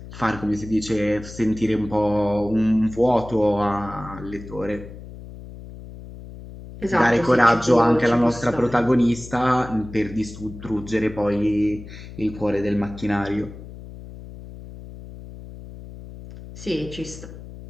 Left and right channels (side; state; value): left; noise; hum, 14 dB below the sound